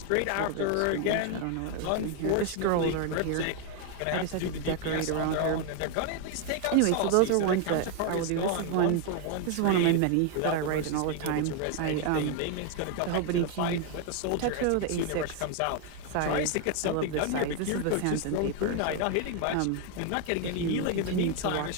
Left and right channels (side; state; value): both; different; correlation 0.00